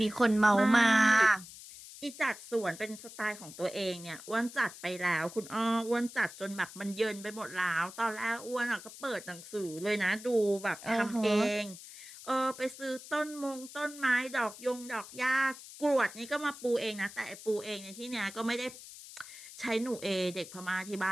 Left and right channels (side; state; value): left; noise; hiss, 15 dB below the sound